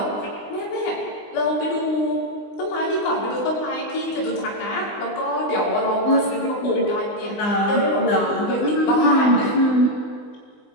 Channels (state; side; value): late; right; 20 ms